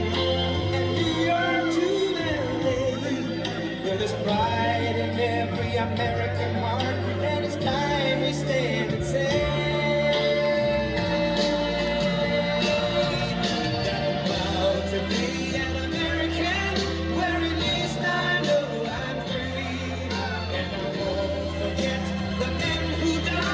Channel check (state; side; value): identical; both; correlation 1.00